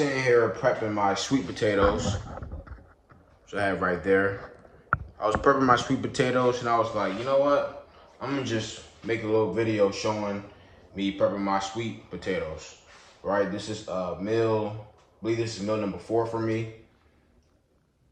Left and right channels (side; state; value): both; identical; correlation 1.00